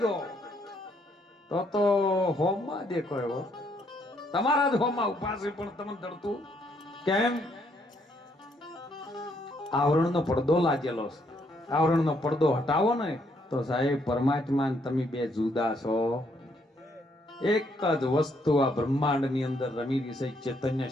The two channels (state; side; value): normal; both; correlation 0.71